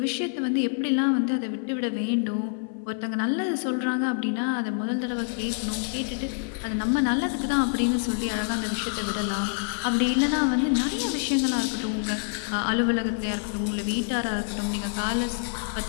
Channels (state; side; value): silent; right; 60 dB below the other